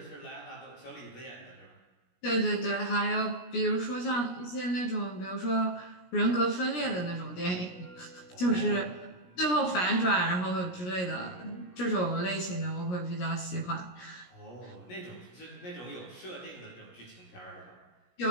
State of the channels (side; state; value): right; late; 17 ms